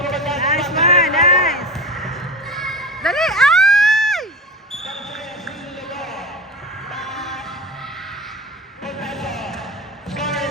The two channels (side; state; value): both; normal; correlation 0.28